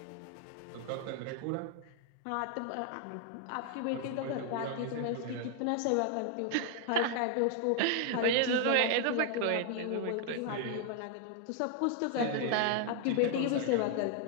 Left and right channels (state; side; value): different; both; correlation 0.00